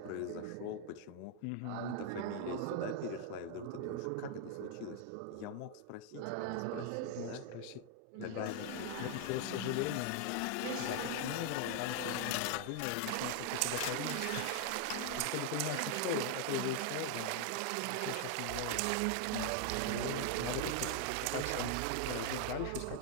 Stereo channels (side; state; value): both; different; correlation 0.00